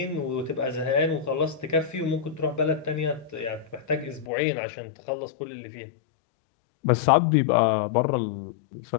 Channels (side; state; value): right; drops out; at 4.3 s